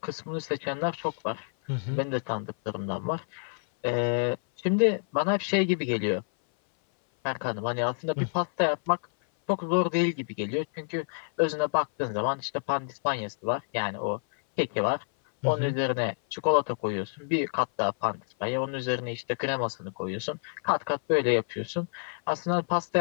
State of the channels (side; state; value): right; silent; 57 dB below the other